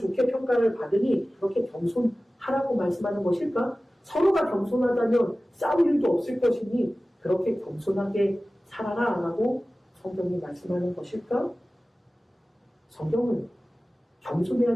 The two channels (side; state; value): both; normal; correlation 0.97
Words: 평가를 받으니 그렇게 겸손하라고 말씀하는 것일까? 서로가 겸손하다면 싸울 일도 없을 것이니 그렇게 겸손하게 살아라 라고 성경이 말씀하는 것일까? 성경은